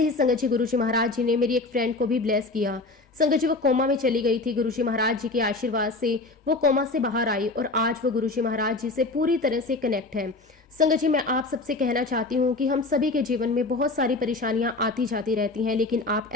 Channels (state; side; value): quieter; right; 3.3 dB